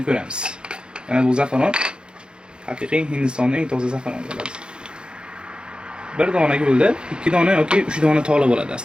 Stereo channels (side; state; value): left; late; 0.051 ms